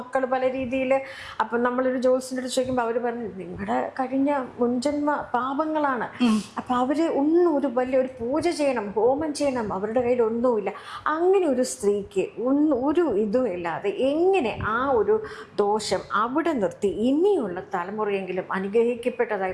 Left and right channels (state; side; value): identical; both; correlation 1.00